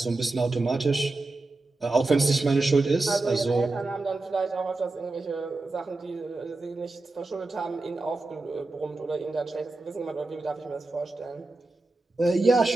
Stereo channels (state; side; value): quieter; left; 3.2 dB